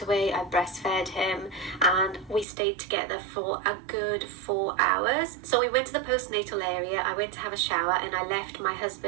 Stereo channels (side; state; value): left; drops out; at 2.5 s